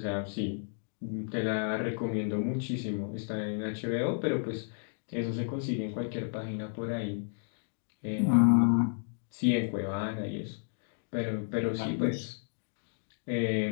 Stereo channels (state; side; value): silent; right; digital silence